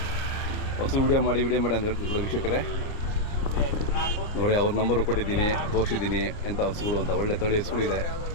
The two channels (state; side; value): late; right; 29 ms